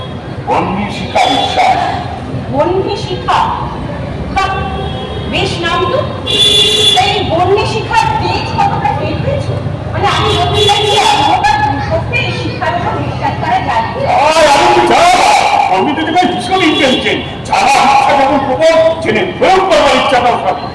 বন্যী শিখা বিশ্বাস। বন্যী শিখা, বেশ নাম তো। এই বন্যী শিখার তেজ কতটা টের পেয়েছো? মানে আমি নতুন লাগিয়ে সত্যি শিক্ষার উপর বিশ্বাস করা যায়। আমি তো দেখে ভীষণ ইন্টেলিজেন্ট, যারা ইচ্ছা যখন প্রবল জেনে প্রয়োগ করবার ইচ্ছাটাও থাকে।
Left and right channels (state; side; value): identical; both; correlation 1.00